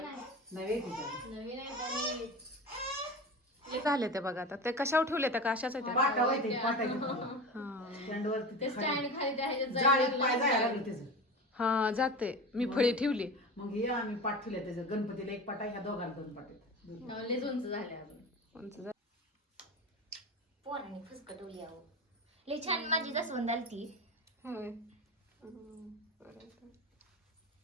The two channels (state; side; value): normal; both; correlation 0.30